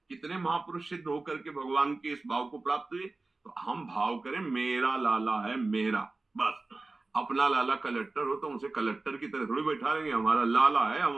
कितने महापुरुष सिद्ध होकर के भगवान के इस भाव को प्राप्त हुए। तो हम भाव करें, मेरा लाला है मेरा, बस। अपना लाला कलेक्टर हो तो उसे कलेक्टर की तरह थोड़ी बैठा लेंगे, हमारा लाला है, हम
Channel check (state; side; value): quieter; left; 3.4 dB